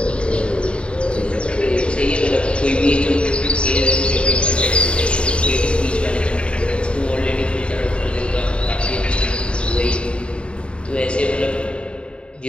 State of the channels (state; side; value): late; right; 0.056 ms